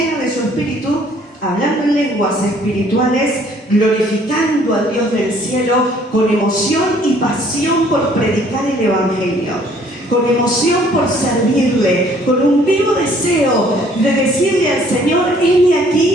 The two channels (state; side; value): normal; both; correlation 0.59